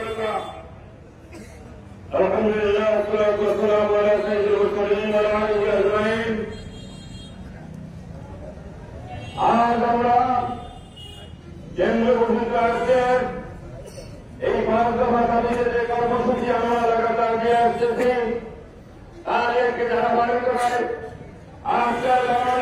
আলহামদুলিল্লাহ, والصلاة والسلام على سيد المرسلين وعلى آله أجمعين। আজ আমরা কেন্দ্র ঘোষিত রাজ্যের এই 5 দফা দাবিতে যে কর্মসূচি আমরা লাগাতার দিয়ে আসতেছি, তার একটি ধারাবাহিকতা হয়। আজকের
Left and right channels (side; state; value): both; identical; correlation 1.00